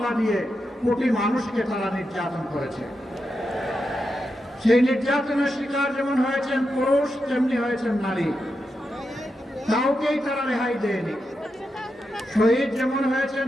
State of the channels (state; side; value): normal; both; correlation 0.87